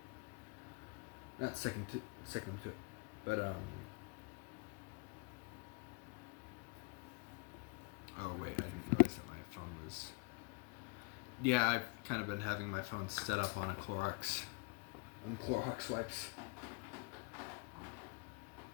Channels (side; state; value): right; quieter; 30.7 dB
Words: Not sticking them to it, but Oh wait, I didn't realize that my phone was. Yeah, I've kind of been having my phone set up on Clorox wipes.